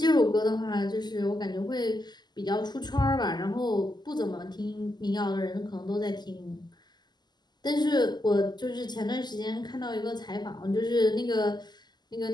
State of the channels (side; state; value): right; late; 0.21 ms